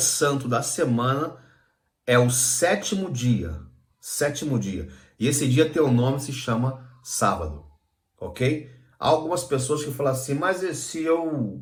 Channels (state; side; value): identical; both; correlation 1.00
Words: da semana é o sétimo dia. Sétimo dia. E esse dia tem o nome, se chama sábado. Ok? Há algumas pessoas que falam assim, mas se